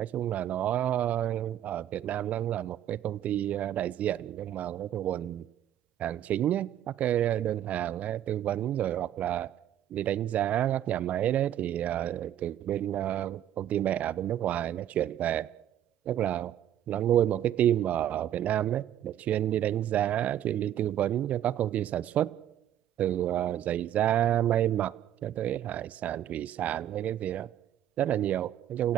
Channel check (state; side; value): quieter; left; 11.3 dB